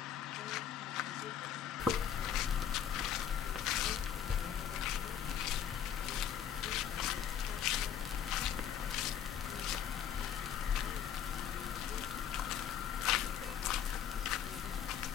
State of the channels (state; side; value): quieter; right; 9.0 dB